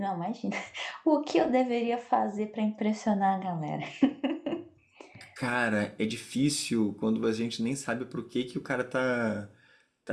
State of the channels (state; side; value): identical; both; correlation 1.00